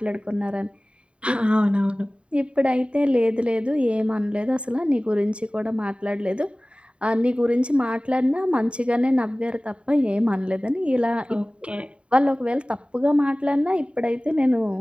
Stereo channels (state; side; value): late; left; 0.058 ms